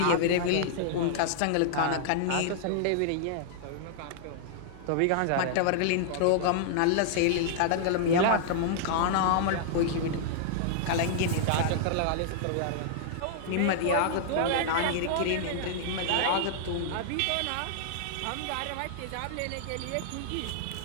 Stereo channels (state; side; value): different; both; correlation -0.01